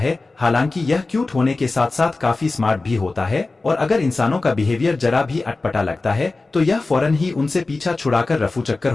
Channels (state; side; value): quieter; right; 3.5 dB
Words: हालांकि यह क्यूट होने के साथ साथ काफी स्मार्ट भी होता है और अगर इंसानों का बिहेवियर जरा भी अटपटा लगता है तो यह फौरन ही उनसे पीछा छुड़ाकर रफू चक्कर